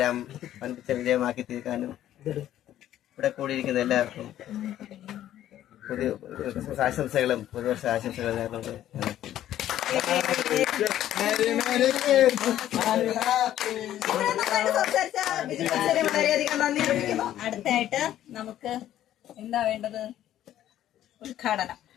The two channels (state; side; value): quieter; right; 12.3 dB